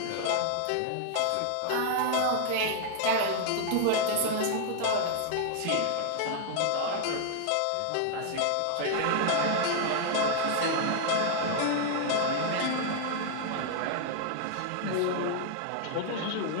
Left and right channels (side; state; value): both; different; correlation 0.00